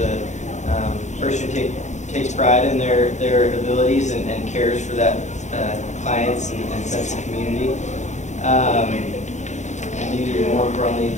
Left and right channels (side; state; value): right; late; 0.34 ms